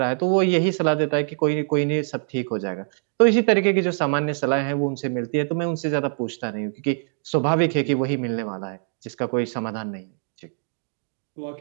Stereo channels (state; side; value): silent; left; digital silence